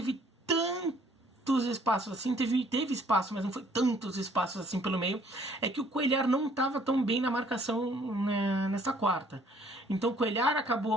tantos espaços assim, teve espaço, mas não foi tantos espaços assim pelo meio. É que o Cuéllar não estava tão bem na marcação nessa quarta. Então o Cuéllar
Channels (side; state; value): both; normal; correlation 0.60